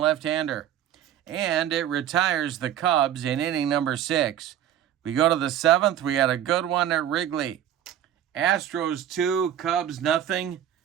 And it retires the Cubs in inning number 6. We go to the 7th. We had a good one at Wrigley. Astros 2, Cubs nothing.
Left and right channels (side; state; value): left; quieter; 10.6 dB